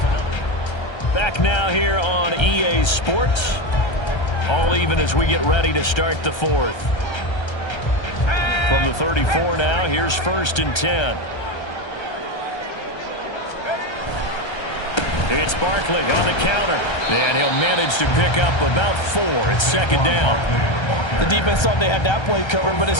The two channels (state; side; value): late; right; 1.3 ms